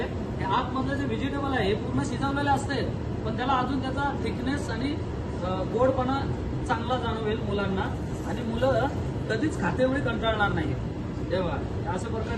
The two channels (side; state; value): both; identical; correlation 1.00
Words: आतमधलं जे व्हेजिटेबल आहे हे पूर्ण शिजवलेले असते, पण त्याला अजून त्याचा थिकनेस आणि गोडपणा चांगला जाणवेल मुलांना. आणि मुलं कधीच खातेवेळी कंटाळणार नाही. तेव्हा अशा